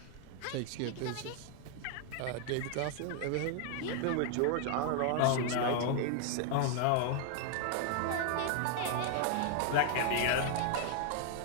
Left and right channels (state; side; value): different; both; correlation 0.00